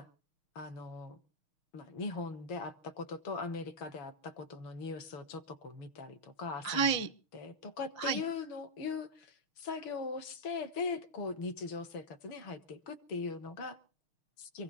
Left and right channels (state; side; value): late; right; 6.4 ms